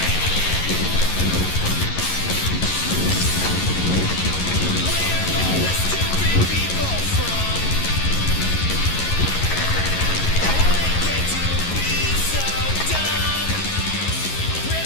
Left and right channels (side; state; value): right; late; 11 ms